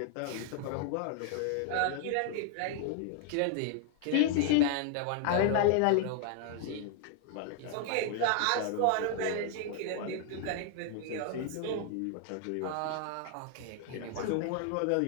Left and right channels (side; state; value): both; different; correlation 0.00